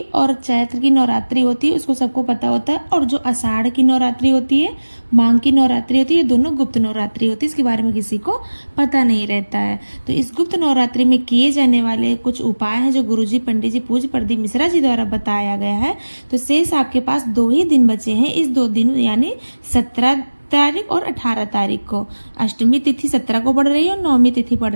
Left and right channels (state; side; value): inverted; both; correlation -1.00